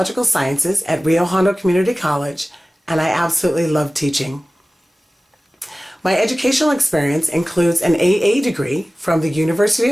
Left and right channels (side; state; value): both; normal; correlation 0.97